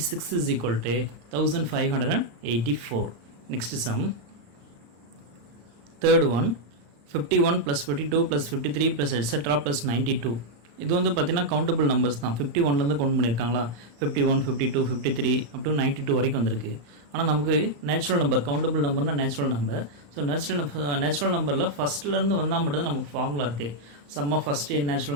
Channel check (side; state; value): left; late; 35 ms